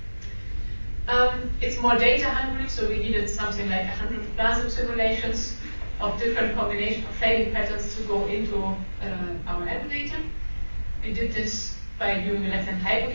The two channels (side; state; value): both; inverted; correlation -1.00